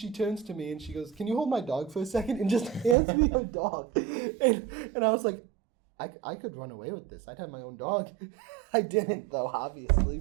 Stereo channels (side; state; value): left; drops out; at 3.0 s